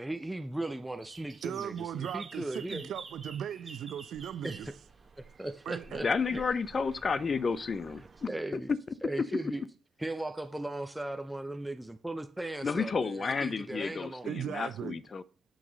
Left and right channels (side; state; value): both; normal; correlation 0.84